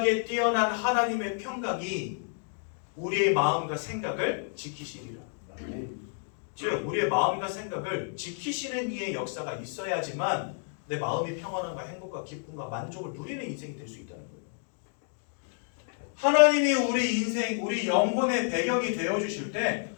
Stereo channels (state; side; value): silent; right; 58 dB below the other